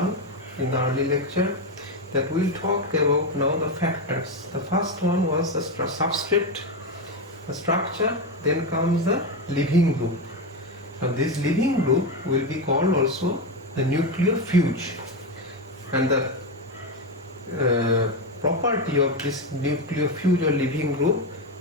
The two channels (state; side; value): normal; both; correlation 0.12